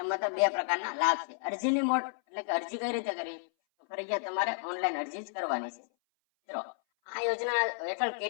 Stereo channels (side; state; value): right; silent; 57 dB below the other